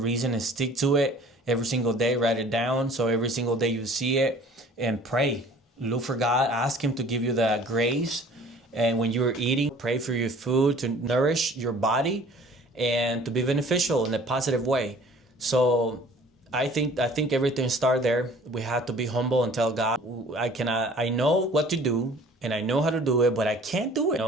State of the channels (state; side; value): normal; both; correlation 0.50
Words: and stick to it every single day. Write it down so every single day you see it, and pray. Look for God. Ask Him to give you the grace. And when you're eating, pray for your food to nourish your body and to be beneficial in a positive way. So I think everything starts there. We have to be humble and tell God, I know what to do, and I know how to do it, but I can't do it.